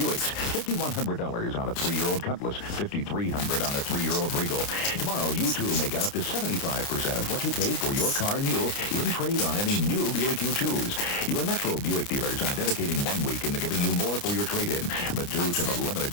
$5,100 on a 3-year-old Cutlass. $5,300 on a 3-year-old Regal. Tomorrow, you too may get up to 75% of what you paid for your car new in trade on any new Buick you choose. Your Metro Buick dealers are dedicating 1 week into giving you more for your trade-in. But due to the limited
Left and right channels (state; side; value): late; right; 29 ms